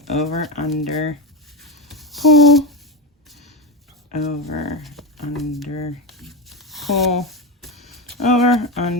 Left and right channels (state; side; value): normal; both; correlation 0.15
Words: over, under, pull, over, under, pull, over,